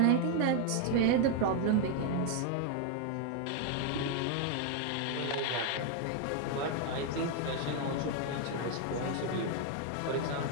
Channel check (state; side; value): different; both; correlation 0.01